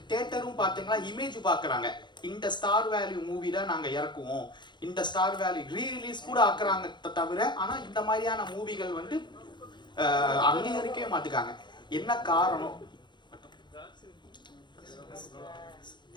தியேட்டரும் பார்த்தீங்கன்னா இமேஜ் பார்க்குறாங்க, இந்த ஸ்டார் வேல்யூ மூவி தான் நாங்கள் இறக்குவோம், இந்த ஸ்டார் வேல்யூ ரீரிலீஸ் கூட ஆக்குறாங்க தவிர, ஆனால் இந்த மாதிரியான மூவிகள் வந்து அங்கீகரிக்கவே மாட்டுக்காங்க. என்ன காரணம்?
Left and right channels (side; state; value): right; late; 0.22 ms